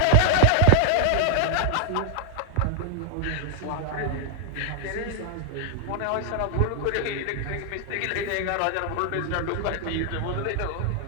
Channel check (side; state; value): both; different; correlation 0.00